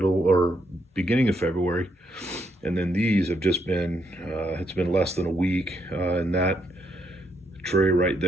or beginning of February, and then these have just been it's been less than a week, and that tray right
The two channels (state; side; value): normal; both; correlation 0.76